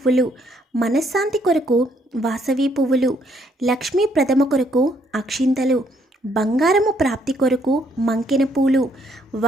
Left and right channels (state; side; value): normal; both; correlation 0.69